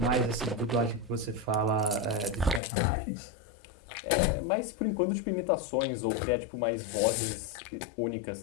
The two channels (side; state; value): right; drops out; at 2.6 s